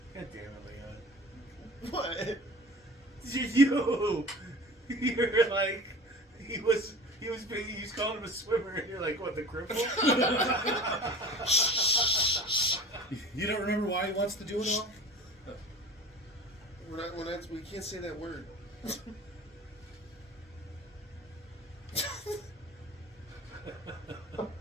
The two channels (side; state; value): both; normal; correlation 0.38